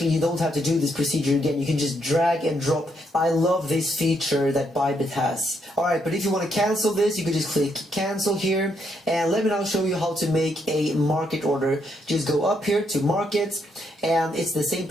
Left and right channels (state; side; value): normal; both; correlation 0.76